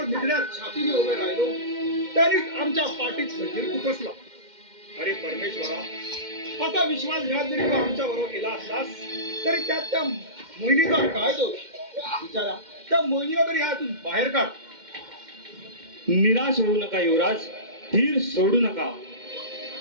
निधड्यात छातीने उभे राहिलो, त्यांनीच आमच्या पाठीत खंजीर खुपसला. अरे परमेश्वरा, असा विश्वासघात जरी तू आमच्या बरोबर केला असलास तरी त्यात त्या मोहिनीचा काय दोष? विचारा, त्या मोहिनीला तरी ह्यातून बाहेर काढ. निराश होऊ नका युवराज, धीर सोडू नका.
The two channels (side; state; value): left; late; 2.1 ms